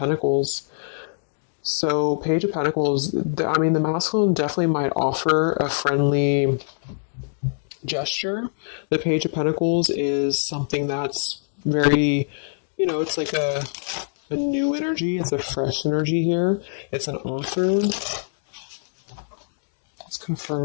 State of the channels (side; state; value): right; silent; digital silence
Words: So Page of Pentacles, the masculine definitely might offer a friendly gesture. The Page of Pentacles is something that's very, it's like a new energy. It's a fresh energy here. It's an offer. Let's